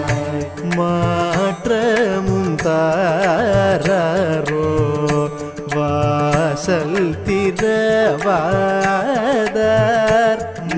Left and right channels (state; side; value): identical; both; correlation 1.00